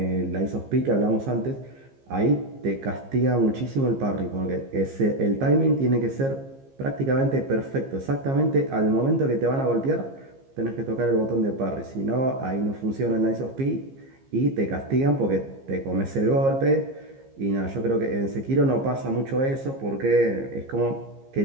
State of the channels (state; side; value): late; left; 15 ms